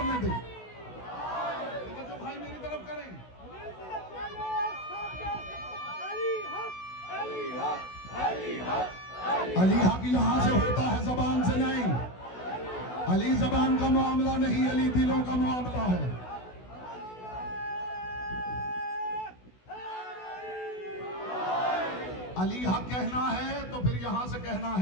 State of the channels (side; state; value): right; late; 16 ms